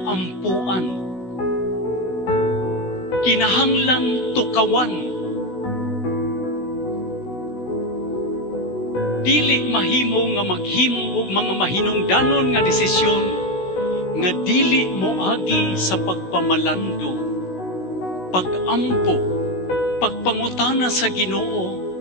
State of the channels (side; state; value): right; late; 16 ms